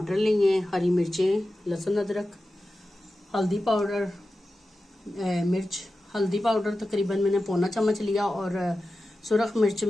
लिए, हरी मिर्चें, लहसुन, अदरक, हल्दी पाउडर, मिर्च हल्दी पाउडर तकरीबन मैंने पौना चम्मच लिया और सुरख मिर्च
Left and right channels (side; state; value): both; normal; correlation 0.93